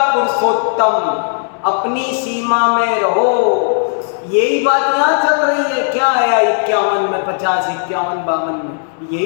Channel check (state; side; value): silent; right; 70 dB below the other